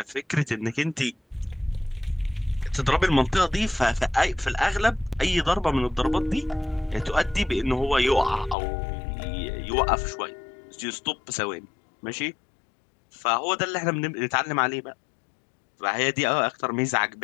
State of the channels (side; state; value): right; drops out; at 8.6 s